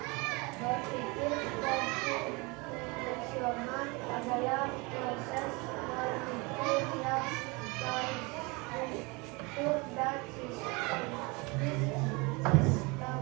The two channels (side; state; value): left; quieter; 27.2 dB